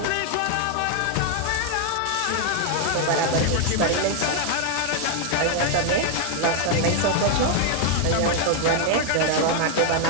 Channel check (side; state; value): both; different; correlation 0.00